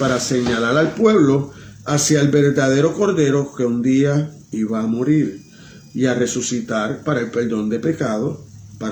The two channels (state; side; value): identical; both; correlation 1.00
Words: señalar al pueblo hacia el verdadero Cordero que un día iba a morir y a resucitar para el perdón de pecados